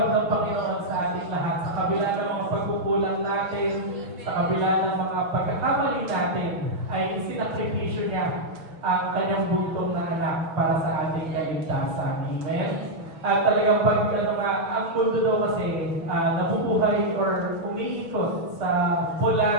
ng Panginoon sa ating lahat. Sa kabila ng mga pagkukulang natin, sa kabila ng mga pagkakamali natin, ay isinakripisyo niya ang kanyang buntong na anak para sa ating kaligtasan. Amen? At talagang ang mundo daw kasi nabubuhay or umiikot sa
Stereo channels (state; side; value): late; left; 6.2 ms